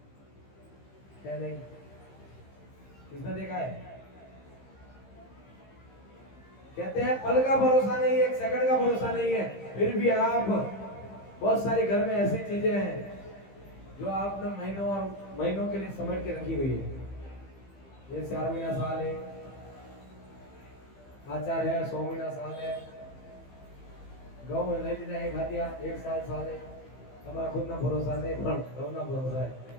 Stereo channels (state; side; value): late; right; 15 ms